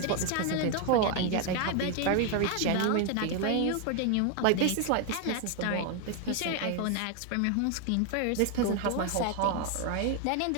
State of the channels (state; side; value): different; both; correlation 0.01